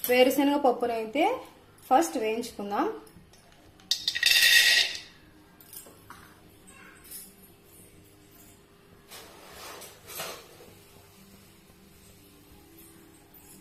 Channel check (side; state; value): both; identical; correlation 1.00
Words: వేరుశనగ పప్పునైతే ఫస్ట్ వేయించుకుందాం.